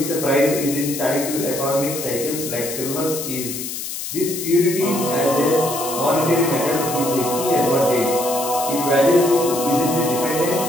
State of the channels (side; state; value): left; noise; hiss, 6 dB below the sound